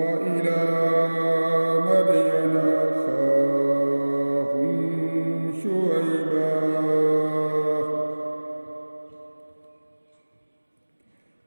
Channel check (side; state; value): both; inverted; correlation -1.00